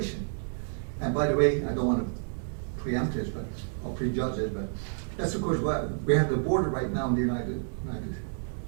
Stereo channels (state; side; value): silent; left; 58 dB below the other